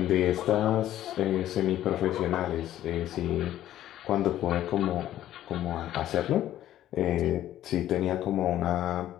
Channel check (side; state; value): right; quieter; 12.7 dB